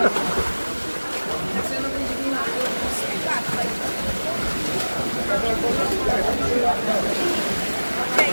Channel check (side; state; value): both; inverted; correlation -1.00